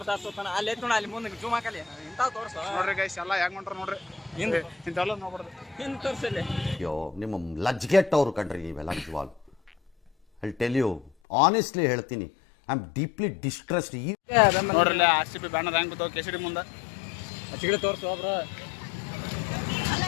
ಅಲ್ಲಿ ನೋಡ, ಅಲ್ಲಿ ಮುಂದೆ ಜೂಮ್ ಹಾಕಲಿ ಇಂಥ ತೋರ್ಸ. ನೋಡ್ರಿ ಗೈಸ್, ಎಲ್ಲ ಹೆಂಗ್ ಹೊಂಟ್ರ ನೋಡ್ರಿ. ಇಂಥವೆಲ್ಲ ನೋಡ್ಬಾರ್ದು. ಹಿಂದ್ ತೋರ್ಸಲ್ಲಿ. ಅಯ್ಯೋ, ನಿಮ್ಮ ಲಜ್ಗೆಟ್ಟವ್ರು ಕಣ್ರಿ ನೀವೆಲ್ಲ ನಿಜವಾಗ್ಲು. ಐ ಟೆಲ್ ಯು ಆನೆಸ್ಟ್ಲಿ ಹೇಳ್ತೀನಿ, ಐ ಆಮ್ ಡೀಪ್ಲಿ ಡಿಸ್ಟ್ರೆಸ್ಡ್. ನೋಡ್ರಿ ಆರ್ ಸಿ ಬಿ ಬ್ಯಾನರ್ ಹೆಂಗ್ ಬಿದ್ದಾವ KCD ಮುಂದೆ. ಚಿಗಡೆ ತೋರ್ಸು ಬ್ರೋ.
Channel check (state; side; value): drops out; right; at 11.1 s